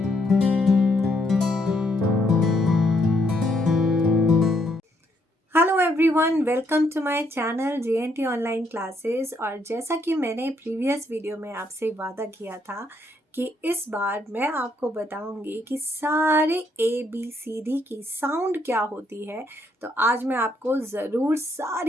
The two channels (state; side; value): normal; both; correlation 0.73